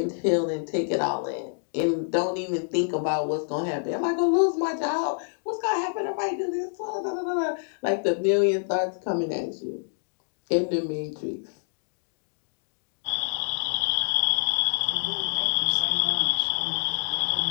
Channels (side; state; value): right; silent; digital silence